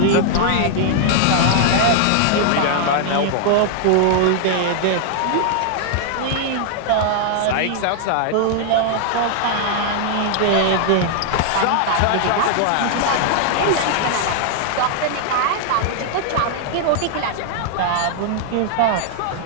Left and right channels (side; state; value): both; different; correlation -0.01